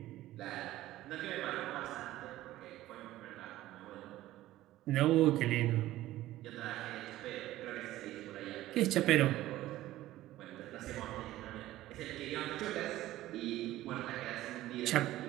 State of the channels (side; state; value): left; quieter; 15.3 dB